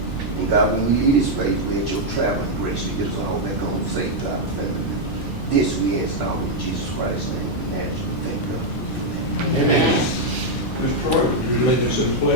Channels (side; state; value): right; late; 1.2 ms